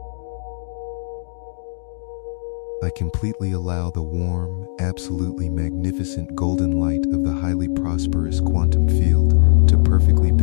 I completely allow the warm, absolutely magnificent golden light of the highly prosperous quantum field to perfectly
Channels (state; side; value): silent; right; digital silence